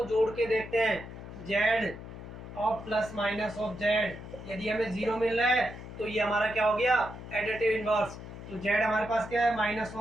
जोड़ के देखते हैं, z of plus minus of z, यदि हमें 0 मिल रहा है तो ये हमारा क्या हो गया, एडिटिव इनवर्स। तो जेड हमारे पास क्या है, minus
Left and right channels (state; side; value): noise; left; hum, 12 dB below the sound